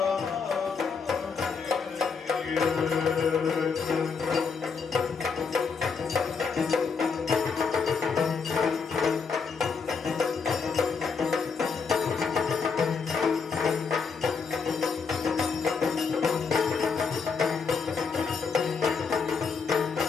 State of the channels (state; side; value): quieter; right; 5.5 dB